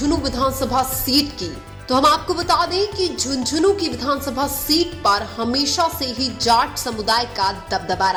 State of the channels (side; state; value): both; identical; correlation 1.00